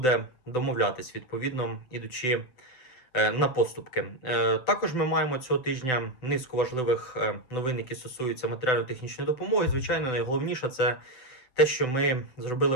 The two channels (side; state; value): right; late; 7.8 ms